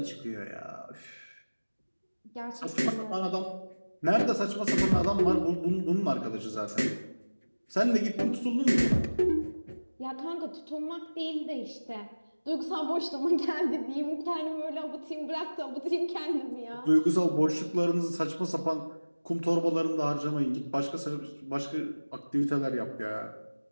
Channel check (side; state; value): both; inverted; correlation -1.00